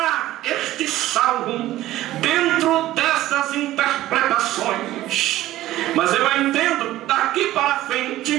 este salmo dentro dessas interpretações. Mas eu entendo, daqui para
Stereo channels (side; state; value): left; quieter; 15.1 dB